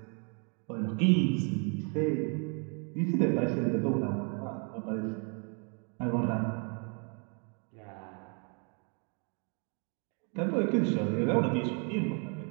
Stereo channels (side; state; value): left; quieter; 37.6 dB